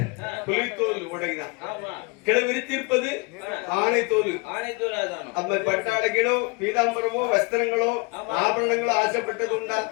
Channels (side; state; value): right; quieter; 28.3 dB